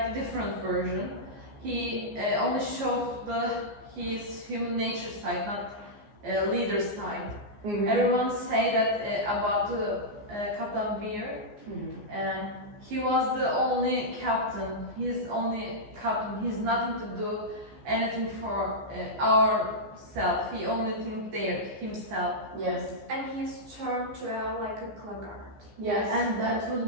a different version. He only showed his human nature side, not leader side. Everyone say that about Captain Weir, and he was the only captain. He's only captain. He's nothing to do anything for ourself. He only think there himself. Yes. And he's turned to like a Claggart. Yes. And that would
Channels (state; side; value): late; left; 14 ms